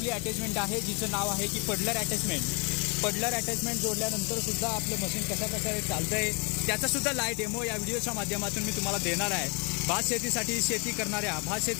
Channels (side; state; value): right; quieter; 32.4 dB